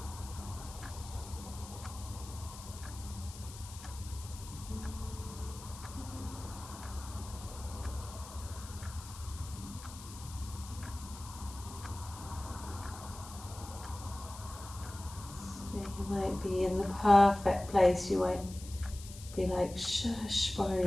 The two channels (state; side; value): noise; left; hiss, 15 dB below the sound